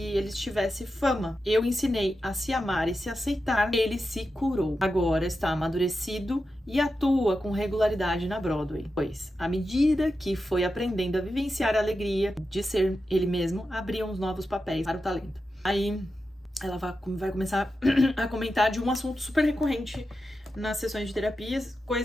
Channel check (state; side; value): normal; both; correlation 0.90